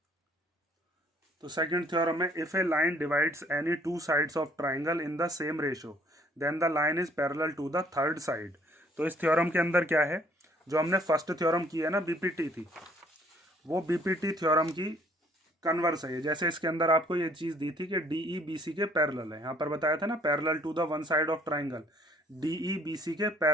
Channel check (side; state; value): both; normal; correlation 0.61